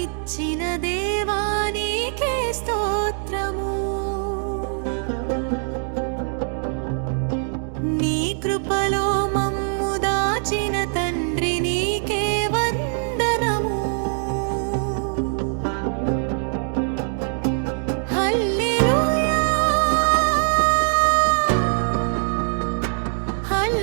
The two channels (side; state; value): left; silent; 61 dB below the other